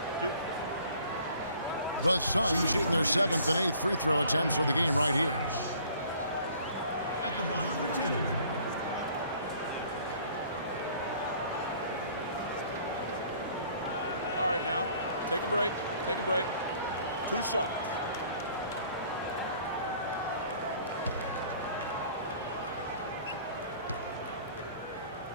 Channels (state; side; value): inverted; both; correlation -0.55